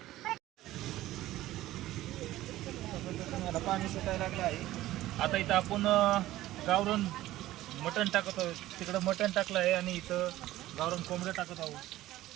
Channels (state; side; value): quieter; left; 15.5 dB